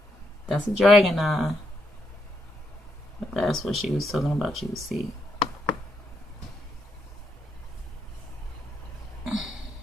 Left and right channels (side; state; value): both; normal; correlation 0.79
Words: That's a dragon eye. But that's what she was talking about you would see.